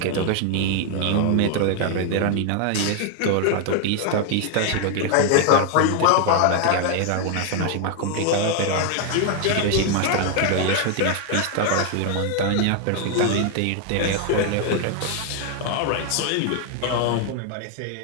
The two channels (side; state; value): both; different; correlation 0.00